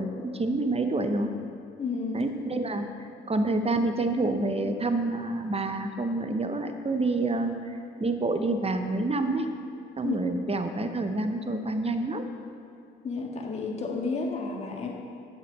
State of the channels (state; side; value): normal; both; correlation 0.60